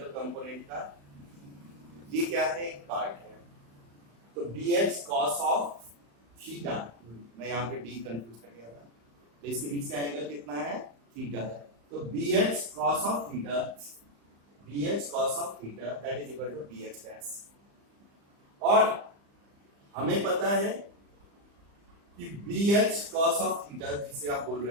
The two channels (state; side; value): late; left; 35 ms